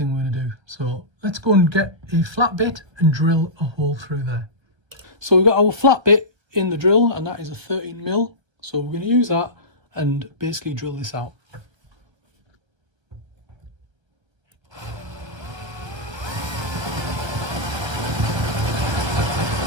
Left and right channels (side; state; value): left; late; 1.3 ms